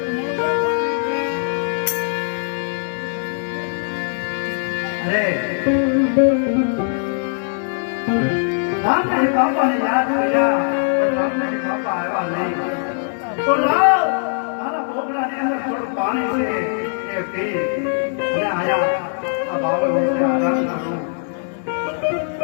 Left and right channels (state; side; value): silent; right; digital silence